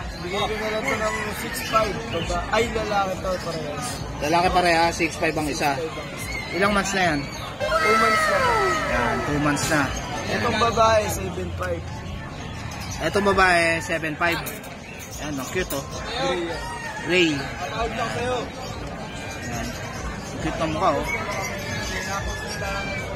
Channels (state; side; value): identical; both; correlation 1.00